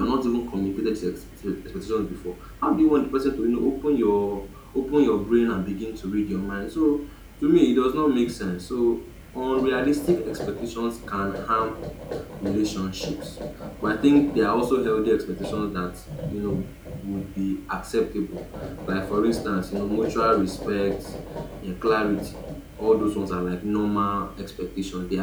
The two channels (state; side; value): identical; both; correlation 1.00